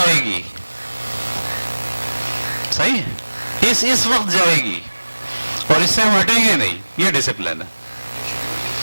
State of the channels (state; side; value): inverted; both; correlation -1.00